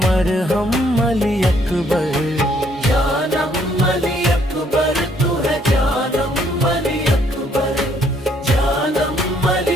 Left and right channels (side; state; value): both; normal; correlation 0.67